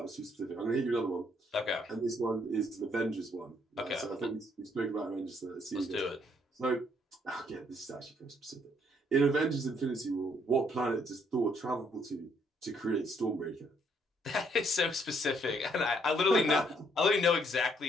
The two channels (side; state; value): both; normal; correlation 0.69